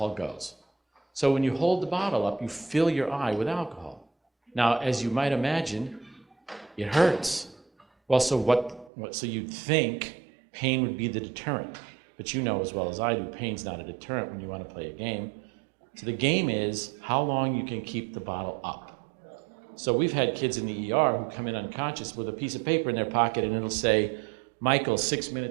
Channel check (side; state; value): left; drops out; at 8.9 s